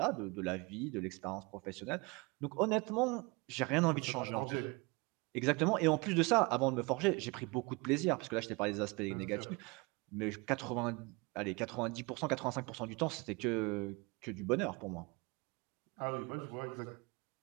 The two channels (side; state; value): left; quieter; 27.0 dB